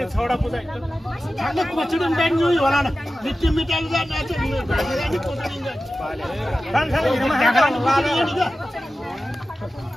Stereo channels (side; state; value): both; normal; correlation 0.94